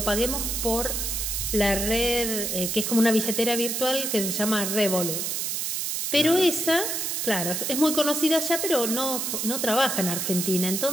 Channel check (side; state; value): right; noise; hiss, 1 dB below the sound